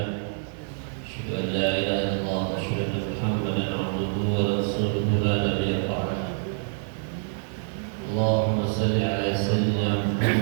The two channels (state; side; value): silent; left; 61 dB below the other